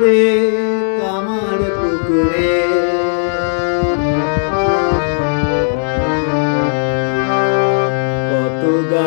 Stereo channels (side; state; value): right; silent; digital silence